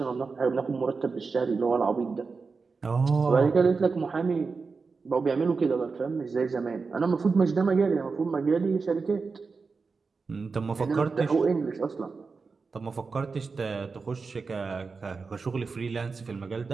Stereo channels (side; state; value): left; quieter; 4.6 dB